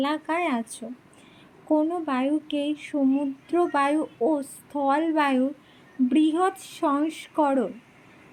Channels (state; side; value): identical; both; correlation 1.00